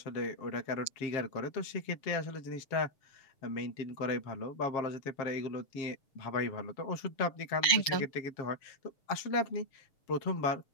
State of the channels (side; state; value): right; late; 6.6 ms